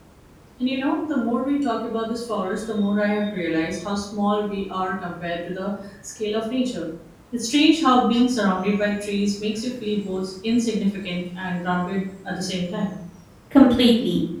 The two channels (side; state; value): both; identical; correlation 1.00